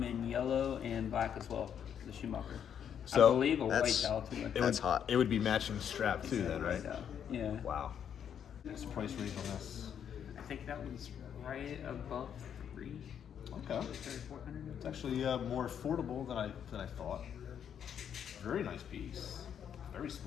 in yellow and black as well. The Schumacher. So, I believe a white that's- dial too. It That's would, hot. It would be matching strap too, then, right? Yeah. Wow. What's the price range on this? I think that one's right above 3. Okay. 3,400. It's actually more affordable than I thought. Very nice piece. Very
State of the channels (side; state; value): right; quieter; 8.6 dB